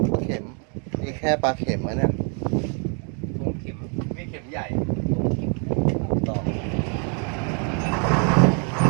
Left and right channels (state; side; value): quieter; left; 39.2 dB